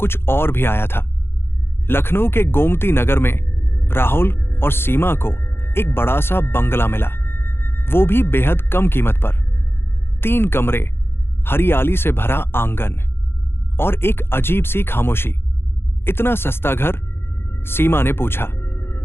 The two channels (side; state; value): right; late; 0.11 ms